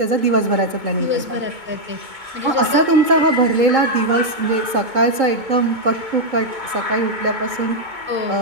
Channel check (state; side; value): late; left; 2.2 ms